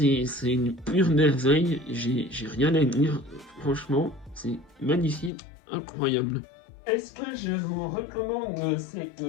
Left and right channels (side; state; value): right; drops out; at 5.3 s